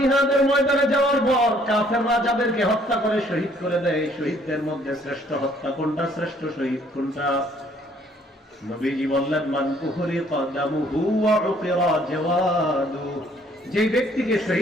ময়দানে যাওয়ার পর কাফেররা যাদেরকে হত্যা করে শহীদ করে দেয়, শহীদদের মধ্যে শ্রেষ্ঠ হত্যা কোনটা, শ্রেষ্ঠ শহীদ কোনটা? নবীজি বললেন, মান উহরিকা দামুহু ওয়া উকিরা জাওয়াদু, যে ব্যক্তিকে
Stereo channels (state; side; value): normal; both; correlation 0.62